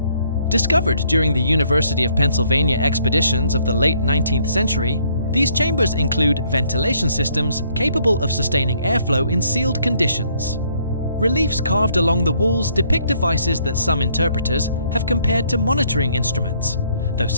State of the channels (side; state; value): both; inverted; correlation -0.66